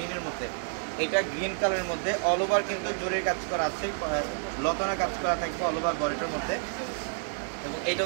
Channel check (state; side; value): silent; left; 58 dB below the other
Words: মধ্যে, এটা গ্রিন কালারের মধ্যে অল ওভার কিন্তু জরির কাজ করা আছে, লতানা কাজ করা থাকবে অল ওভার বডিটার মধ্যে। এবং এটা